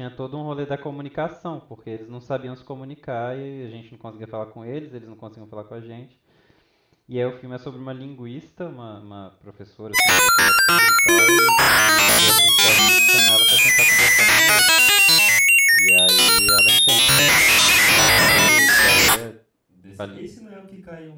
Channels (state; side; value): identical; both; correlation 1.00